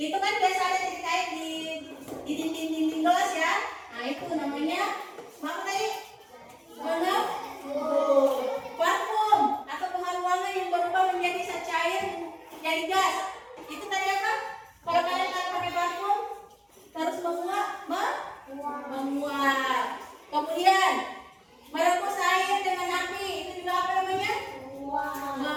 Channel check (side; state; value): both; identical; correlation 1.00